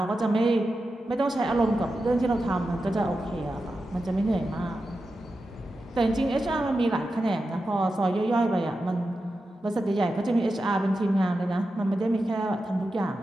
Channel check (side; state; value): both; normal; correlation 0.91